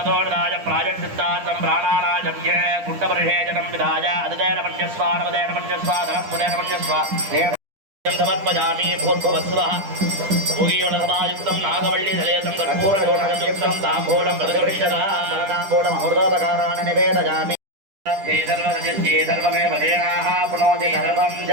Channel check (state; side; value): late; left; 10 ms